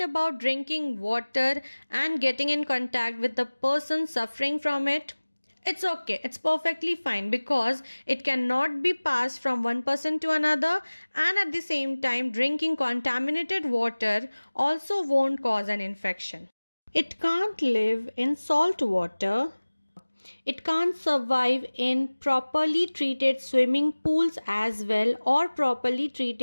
about drinking water and getting in contact with the person suffering from it? It's okay, it's perfectly fine, because it cannot be passed from one person to another, and at the same time drinking contaminated water also won't cause an infection. It can't live in salt water. It can't survive in properly treated swimming pools as well, or properly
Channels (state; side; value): inverted; both; correlation -1.00